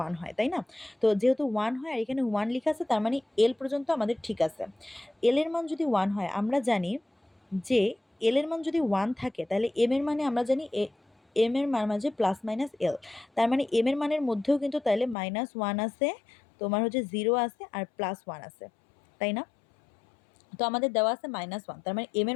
1 হয়, তাই না? তো যেহেতু 1 হয় আর এখানে 1 লেখা আছে, তার মানে L পর্যন্ত আমাদের ঠিক আছে। L এর মান যদি 1 হয়, আমরা জানি যে L এর মান যদি 1 থাকে, তাহলে M এর মানে আমরা জানি M এর মান মাঝে +-L, তার মানে M এর মানের মধ্যেও কিন্তু তাহলে -1 আছে, তোমার হচ্ছে 0 আছে, আর +1 আছে, তাই না? তো আমাদের দেওয়া আছে -1, তার মানে এম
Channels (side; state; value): right; drops out; at 15.2 s